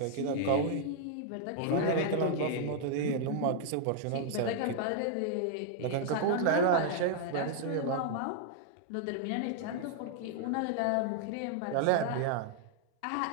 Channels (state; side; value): different; both; correlation 0.00